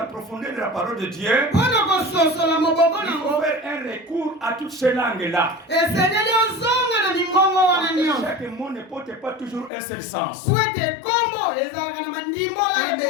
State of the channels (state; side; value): drops out; right; at 9.7 s